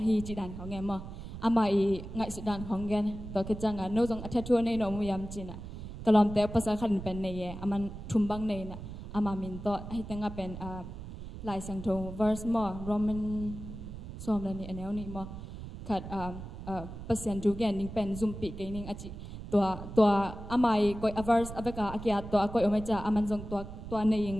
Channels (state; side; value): noise; right; rumble, 10 dB below the sound